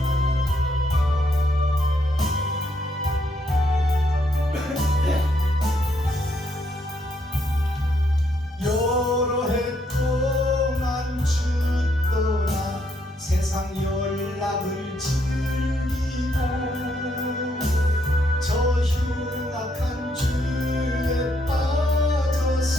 여러 해 동안 주 떠나 세상 연락을 즐기고 저 흉악한 죄에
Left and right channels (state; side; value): normal; both; correlation 0.74